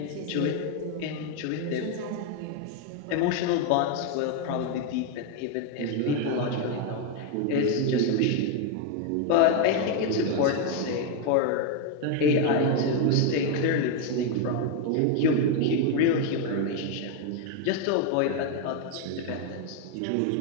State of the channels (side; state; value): both; different; correlation 0.01